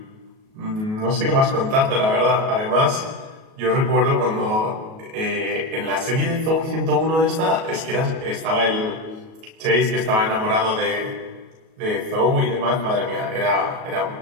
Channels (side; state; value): left; late; 37 ms